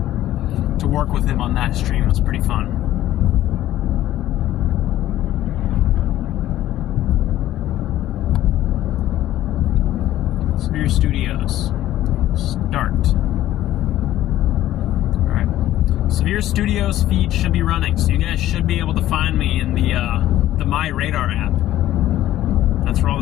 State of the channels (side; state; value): right; quieter; 13.7 dB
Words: to work with him on that stream was pretty fun. Severe Studios. Start. Alright. Severe Studios feed should be running, so you guys should be able to find me in the My Radar app. That's where all